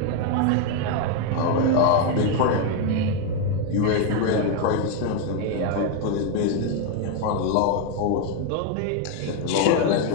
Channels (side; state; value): both; different; correlation 0.01